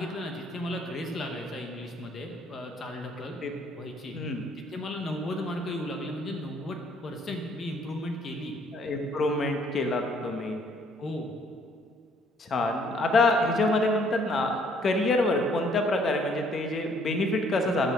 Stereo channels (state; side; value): normal; both; correlation 0.63